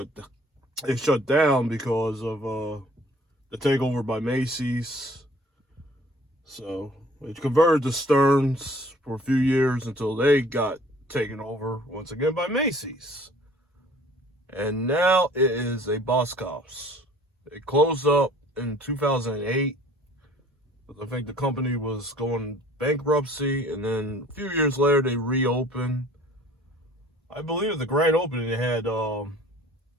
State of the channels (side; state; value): both; normal; correlation 0.53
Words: down because of the takeover by Macy's. So it converted to Stearns for a few years until they got taken over once again by Macy's. And now it is a Boscov's. It closed up in 2008. I think the company was going bankruptcy, and then a few years later they reopened. I believe at the grand opening they had